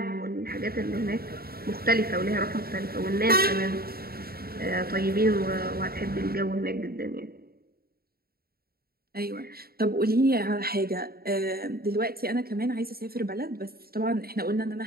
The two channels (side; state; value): left; late; 0.44 ms